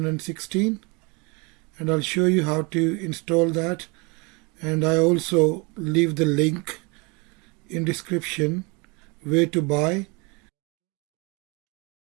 and I'll show you how to install that, and I also leave the link in description where to buy.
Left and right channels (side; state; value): left; quieter; 29.0 dB